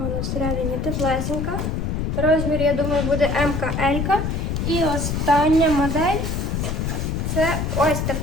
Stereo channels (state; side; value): noise; left; rumble, 1 dB below the sound